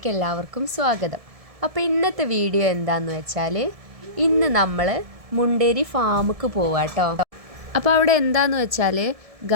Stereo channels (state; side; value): late; left; 1.7 ms